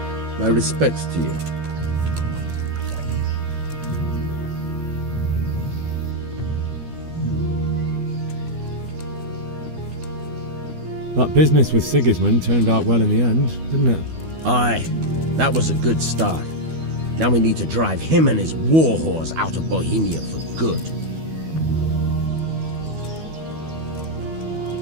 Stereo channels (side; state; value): left; late; 12 ms